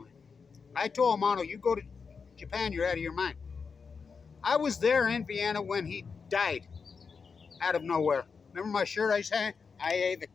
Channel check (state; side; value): quieter; right; 5.4 dB